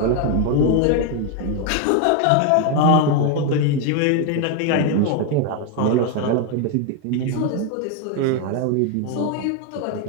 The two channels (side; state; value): both; different; correlation 0.01